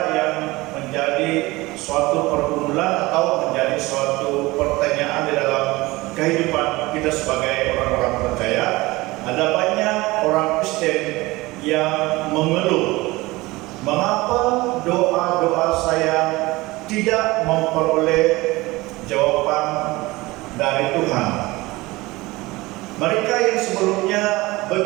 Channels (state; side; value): quieter; left; 21.0 dB